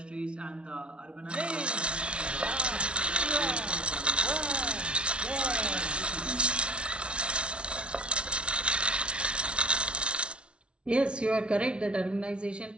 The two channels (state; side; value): late; left; 0.058 ms